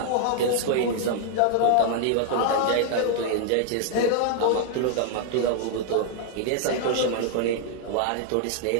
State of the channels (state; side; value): different; both; correlation 0.00